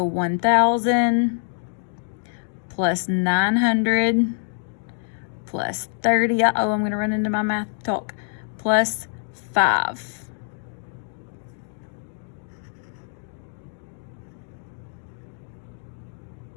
1,000 plus 900 plus 30. Uh-oh, I'm going to run into my math talk. Plus 5.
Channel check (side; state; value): right; silent; 60 dB below the other